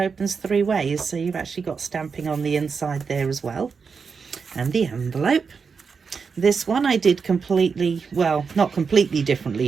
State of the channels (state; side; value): quieter; left; 5.5 dB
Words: 3 ways. So you've actually got stamping on the inside there as well. And the envelope. This one I did completely, well, not completely